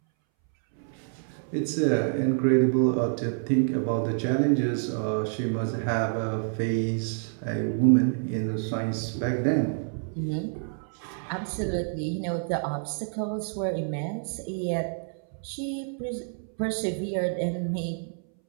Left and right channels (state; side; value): silent; left; 59 dB below the other